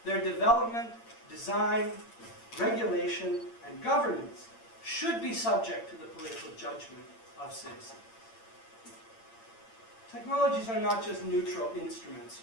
their development, design, regulation, and governance should be subject to the political judgment of citizens. Technologies are not just neutral instruments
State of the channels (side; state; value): right; late; 8.8 ms